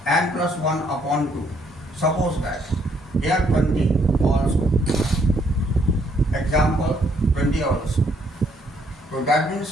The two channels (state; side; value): normal; both; correlation 0.69